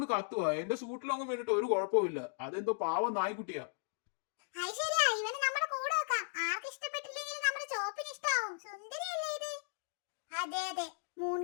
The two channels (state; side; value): silent; right; digital silence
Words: കത്തുവാ. എന്റെ സൂട്ടിലൊന്നും വേണ്ടിട്ട് ഒരു കുഴപ്പമില്ല. അതെന്തോ പാവം നായ്ക്കുട്ടിയാ. അതെ,